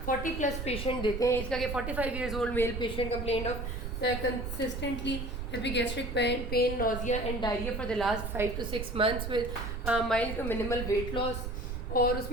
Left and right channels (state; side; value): noise; right; rumble, 5 dB below the sound